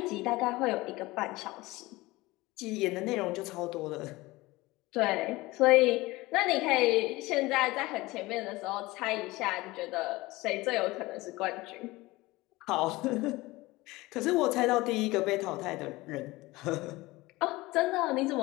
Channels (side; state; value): right; quieter; 20.5 dB